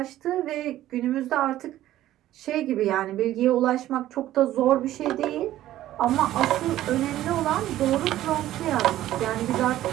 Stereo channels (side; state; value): left; quieter; 13.9 dB